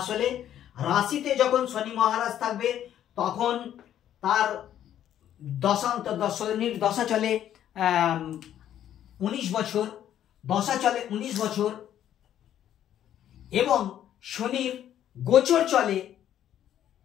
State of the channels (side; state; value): right; quieter; 10.9 dB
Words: রাশিতে যখন শনি মহারাজ থাকবে তখন তার শনির দশা চলে 19 বছর, দশা চলে 19 বছর, এবং শনির গোচর চলে